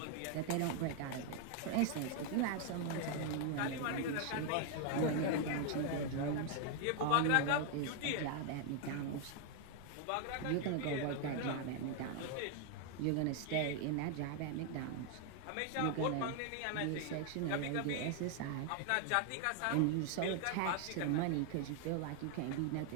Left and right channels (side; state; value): both; different; correlation 0.00